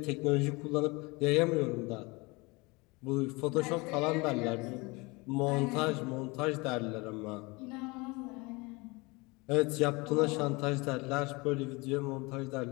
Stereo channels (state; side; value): quieter; right; 25.5 dB